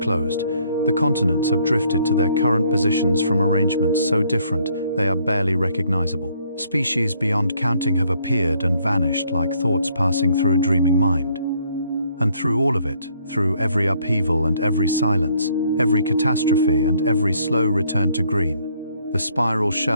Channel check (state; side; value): inverted; both; correlation -0.67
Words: The continents have drifted to their current positions from arrangements so different they are barely recognizable. Species beyond counting have appeared and vanished like thoughts passing through a dreaming mind. And through all of it, through every upheaval and every silence, every catastrophe and every slow return to green, the spiral